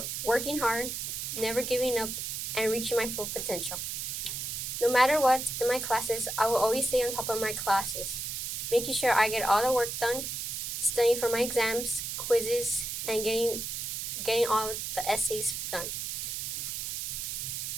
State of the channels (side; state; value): right; noise; hiss, 4 dB below the sound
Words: working hard, never giving up, and reaching my full potential. No matter what, in my classes, I will always stay on top of my classes, making sure I get all the work done, studying for my exams, quizzes, and getting all of the essays done.